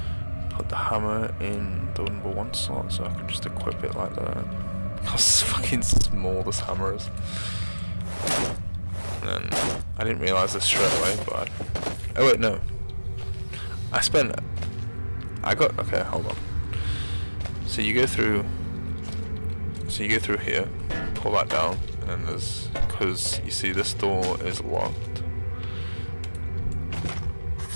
Put the hammer in the number 1 slot so I can just equip it like that. How fucking small this hammer is. And then I didn't realise this straight away, but oh wait, no. Okay, hold on. So you go through here, pull that down, and then there's, because you see this door is locked.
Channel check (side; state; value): both; inverted; correlation -1.00